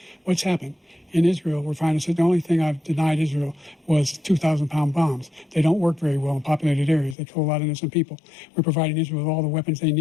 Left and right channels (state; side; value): drops out; right; at 7.2 s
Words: what's happened? In Israel, we're finding that the only thing I've denied Israel was 2,000-pound bombs. They don't work very well in populated areas. They kill a lot of innocent people. We're providing Israel with all the weapons they